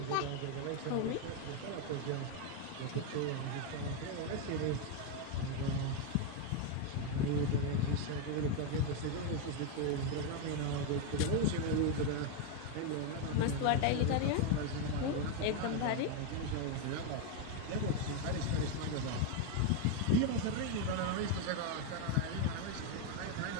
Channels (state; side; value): different; both; correlation 0.01